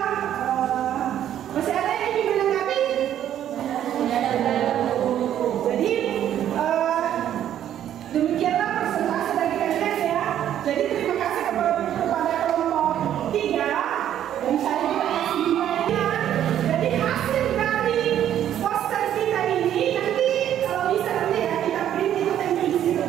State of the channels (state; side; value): quieter; left; 10.8 dB